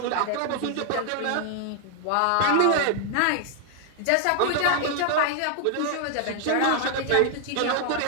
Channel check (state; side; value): different; both; correlation 0.00